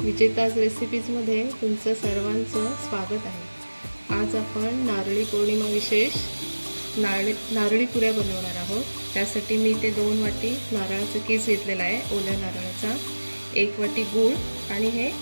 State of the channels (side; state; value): both; inverted; correlation -1.00